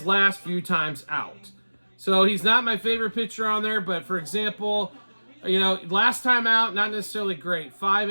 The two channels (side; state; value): both; inverted; correlation -1.00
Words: last few times out. So he's not my favorite pitcher on there, but for example, last time out, not necessarily great. 5